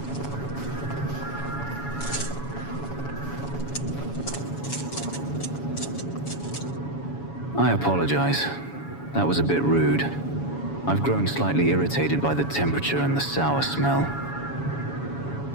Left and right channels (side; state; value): right; late; 7.1 ms